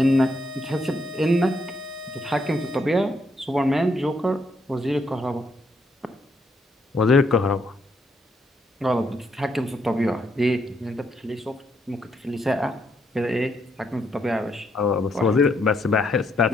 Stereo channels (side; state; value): both; normal; correlation 0.75